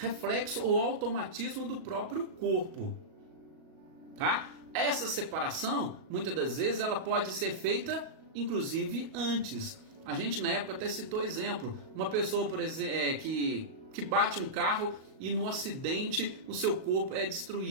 ou automatismo do próprio corpo, tá? Essa separação, muitas das vezes, ela pode ser feita, inclusive, antes. A gente, na época, até citou exemplo. Uma pessoa, por exemplo, que bate um carro e no acidente o seu corpo é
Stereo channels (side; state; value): left; late; 38 ms